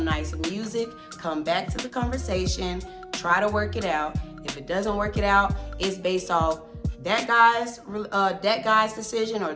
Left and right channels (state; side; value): identical; both; correlation 1.00